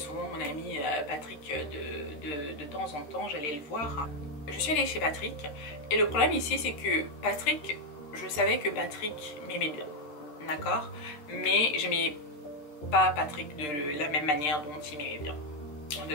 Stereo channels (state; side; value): late; right; 13 ms